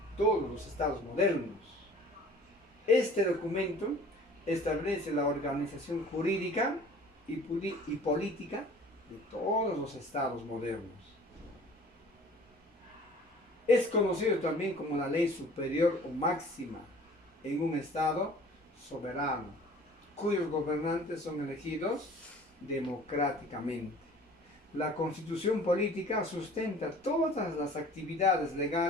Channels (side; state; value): both; normal; correlation 0.48